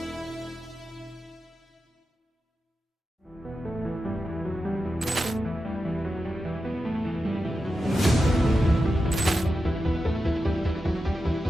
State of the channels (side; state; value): both; normal; correlation 0.90